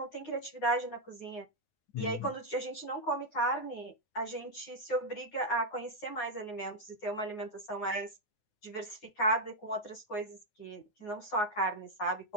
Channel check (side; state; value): right; late; 9.6 ms